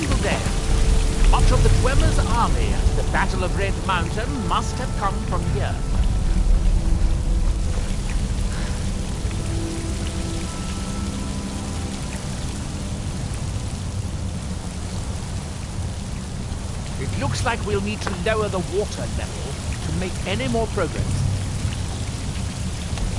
day. Much of the Dwemer's army at the Battle of Red Mountain must have come from here. It looks like we'll need to lower the water level to make any more progress.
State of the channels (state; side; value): identical; both; correlation 1.00